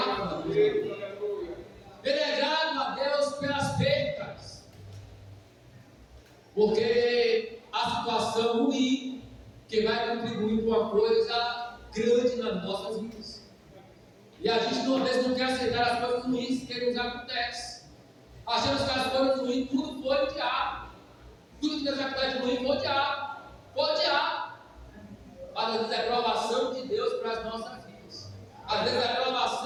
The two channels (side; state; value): both; identical; correlation 1.00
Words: a Deus. Ele é grato a Deus pelas percas, porque a situação ruim que vai contribuir com uma coisa grande nas nossas vidas. E a gente às vezes não quer aceitar as coisas ruins que nos acontecem. Achamos que as coisas ruins tudo foi o diabo. Tudo que nos acontece ruim foi o diabo. Foi o diabo. Mas às vezes é provação de Deus para as nossas vidas. Às vezes é